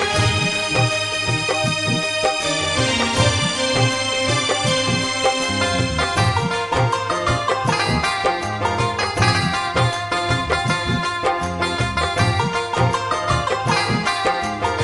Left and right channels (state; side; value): identical; both; correlation 1.00